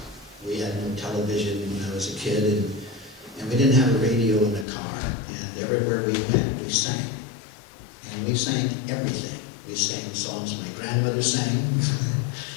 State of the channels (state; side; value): drops out; right; at 4.7 s